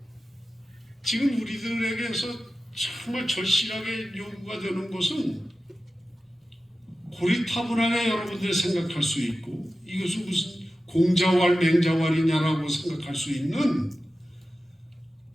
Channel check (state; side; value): normal; both; correlation 0.94